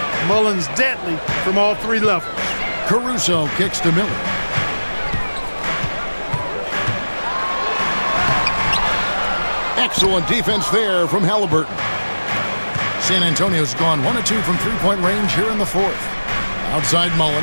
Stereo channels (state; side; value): inverted; both; correlation -1.00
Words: Mullen's deadly from all three levels. Caruso kicks to Miller. Excellent defense there from Halliburton. San Antonio's gone 1 of 2 from three-point range here in the fourth. Outside